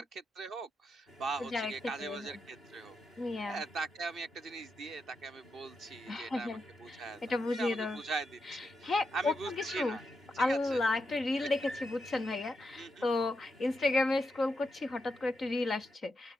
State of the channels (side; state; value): both; normal; correlation 0.85